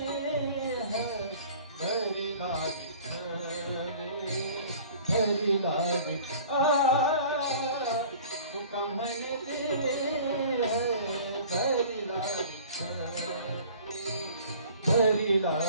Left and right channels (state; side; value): inverted; both; correlation -0.47